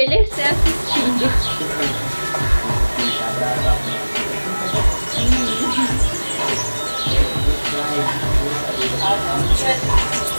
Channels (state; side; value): inverted; both; correlation -1.00